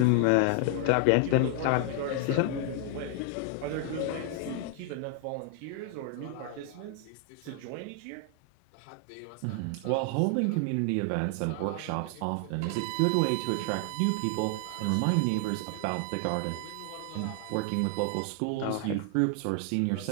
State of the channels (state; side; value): different; both; correlation 0.00